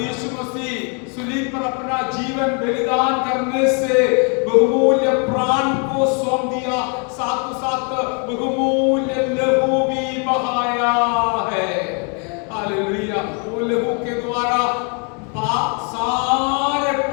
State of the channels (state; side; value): quieter; right; 37.5 dB